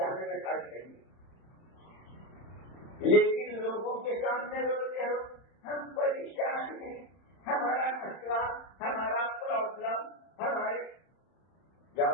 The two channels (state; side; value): late; right; 31 ms